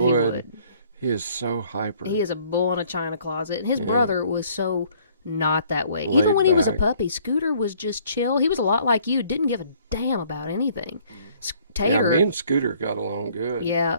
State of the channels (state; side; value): inverted; both; correlation -0.60